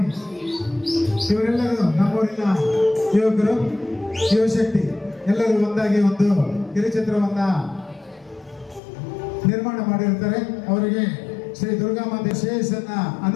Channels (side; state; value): right; drops out; at 8.8 s